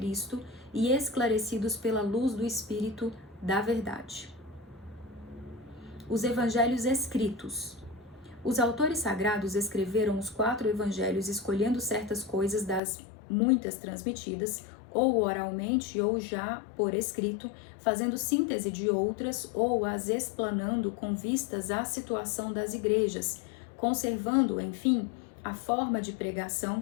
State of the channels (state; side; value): drops out; right; at 12.8 s